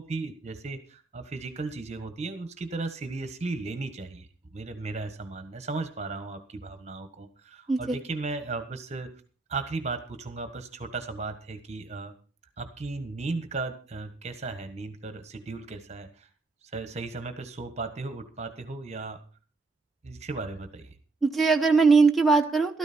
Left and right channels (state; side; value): quieter; left; 3.8 dB